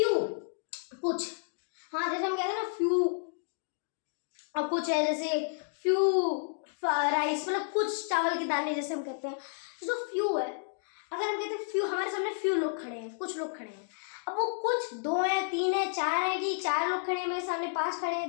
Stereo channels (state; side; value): silent; right; digital silence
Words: कुछ, हाँ जैसे हम कहते हैं ना फ्यू, और कुछ है जैसे फ्यू राइस, मतलब कुछ चावल के दाने जैसे हम कहते हैं। जो फ्यू है, अगर हम कहते हैं फ्यू, हमारे सामने फ्यू लोग खड़े हैं, कुछ लोग खड़े हैं। अब वो कुछ 2 है, 3 है, 4 है, कि 4 लोग खड़े हैं मेरे सामने, 5 खड़े